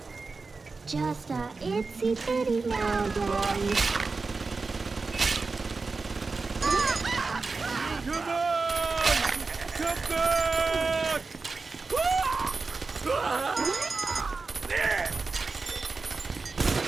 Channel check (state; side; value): quieter; left; 4.1 dB